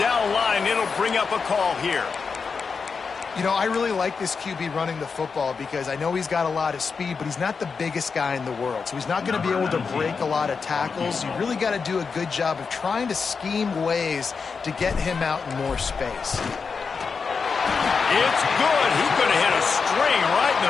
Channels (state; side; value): quieter; right; 5.3 dB